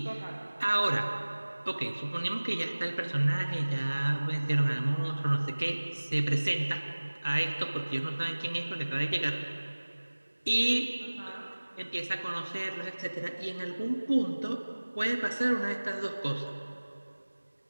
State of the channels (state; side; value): inverted; both; correlation -1.00